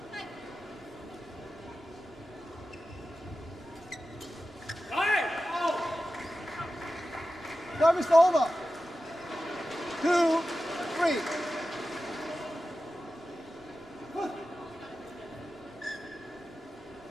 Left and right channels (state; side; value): normal; both; correlation 0.93